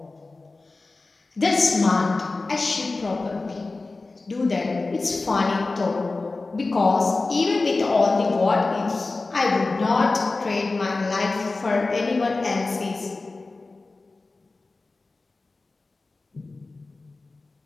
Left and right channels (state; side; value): quieter; right; 3.5 dB